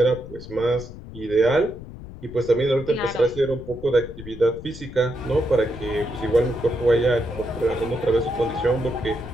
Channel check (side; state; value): left; noise; rumble, 14 dB below the sound